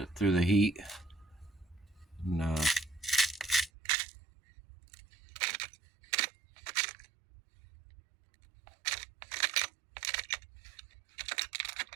through the heat. And,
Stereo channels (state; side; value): drops out; left; at 3.7 s